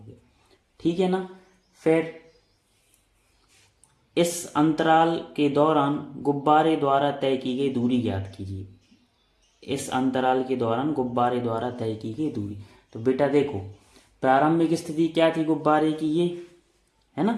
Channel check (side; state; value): both; identical; correlation 1.00